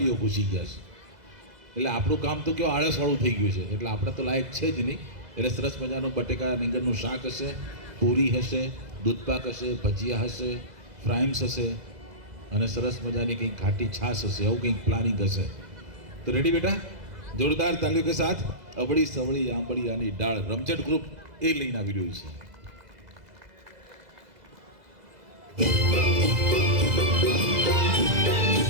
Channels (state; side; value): late; left; 2.0 ms